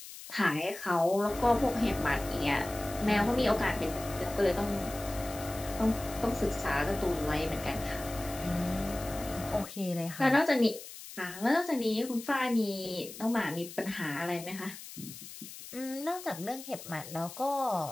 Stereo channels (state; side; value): noise; left; hiss, 13 dB below the sound